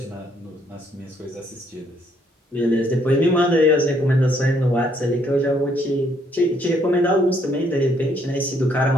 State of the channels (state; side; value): normal; both; correlation 0.69